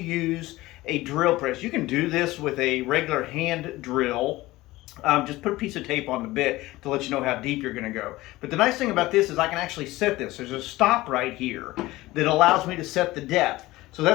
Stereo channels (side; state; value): right; quieter; 18.6 dB